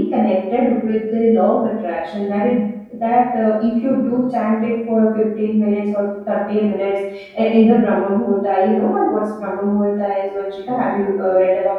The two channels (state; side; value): identical; both; correlation 1.00